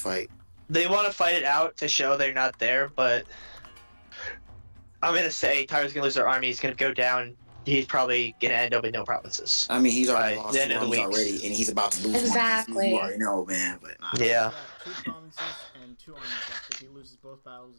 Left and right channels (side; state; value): both; inverted; correlation -1.00